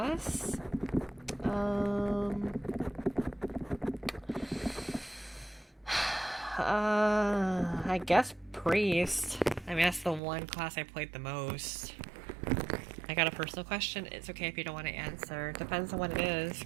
I guess Priest. I mean, that's the one class I played the most. I got a personal question. It's okay if you don't want to answer. Depends on what it is.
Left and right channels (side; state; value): left; drops out; at 10.2 s